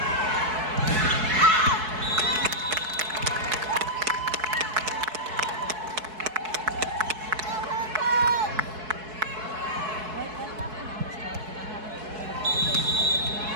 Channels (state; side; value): late; left; 4.6 ms